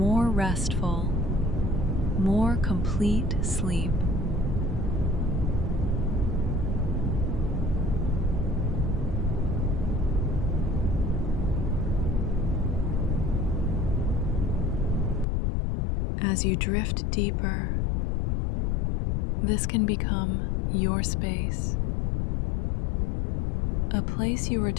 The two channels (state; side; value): drops out; right; at 15.2 s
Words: restful, more complete sleep. As you drift deeper, this can become your space, a place you